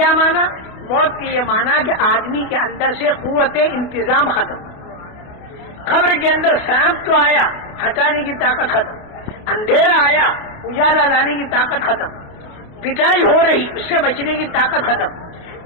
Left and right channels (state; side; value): late; right; 28 ms